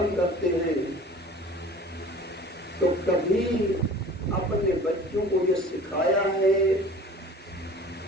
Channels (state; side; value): normal; both; correlation 0.44